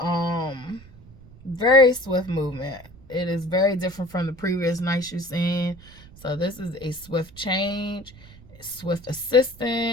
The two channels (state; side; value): noise; right; rumble, 21 dB below the sound